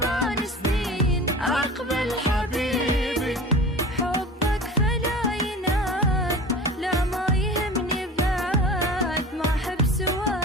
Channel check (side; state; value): both; normal; correlation 0.37